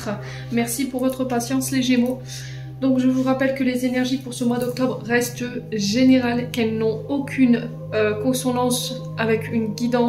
Merci pour votre patience les Gémeaux. Donc je vous rappelle que les énergies pour ce mois d'octobre restent générales, qu'elles n'ont aucune consonance avec une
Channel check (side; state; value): both; identical; correlation 1.00